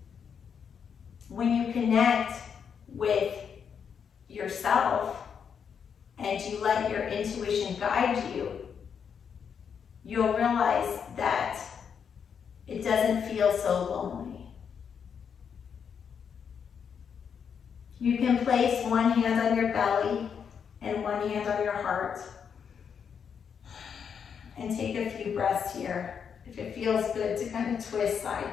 when you connect with yourself and you let your intuition guide you, you'll realize that it doesn't feel so lonely. You can place one hand on your belly and one hand on your heart and take a few breaths here. If it feels good to kind of twist side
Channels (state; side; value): quieter; right; 7.1 dB